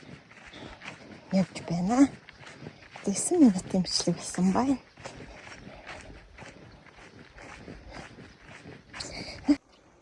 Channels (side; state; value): both; identical; correlation 1.00